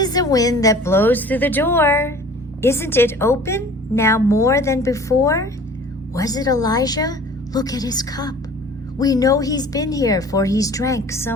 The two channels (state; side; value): normal; both; correlation 0.46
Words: the wind that blows through the door. Isn't it open now more than before? Was it Elijah? Look at his cup. We know he's been here, for he's drank